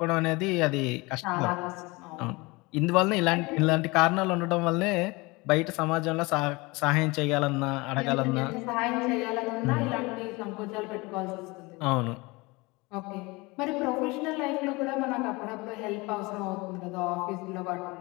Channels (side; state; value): right; quieter; 24.4 dB